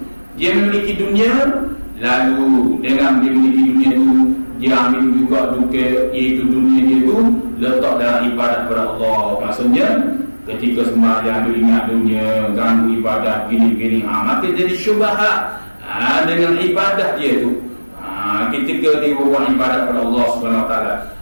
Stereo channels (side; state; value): both; inverted; correlation -1.00